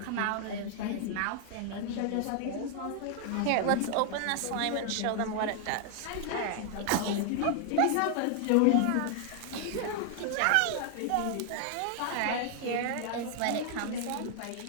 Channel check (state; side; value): different; both; correlation 0.00